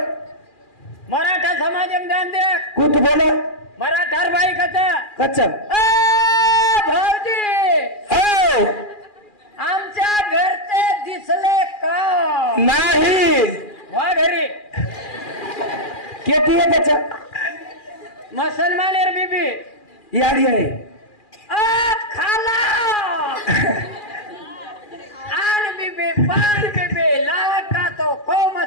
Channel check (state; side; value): late; right; 2.4 ms